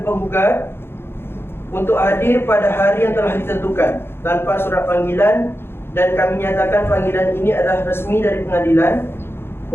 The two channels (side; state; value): right; late; 0.11 ms